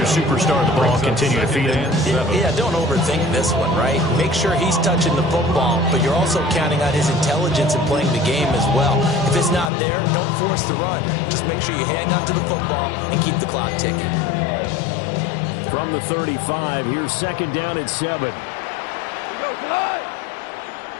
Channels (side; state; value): right; drops out; at 9.7 s